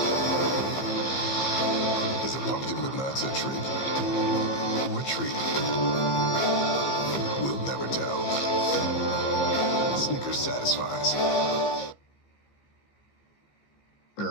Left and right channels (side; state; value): right; late; 15 ms